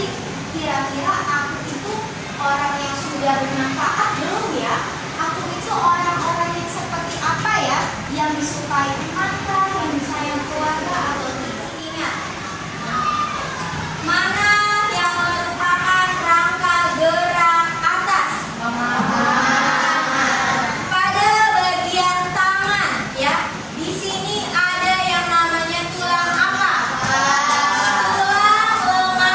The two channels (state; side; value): identical; both; correlation 1.00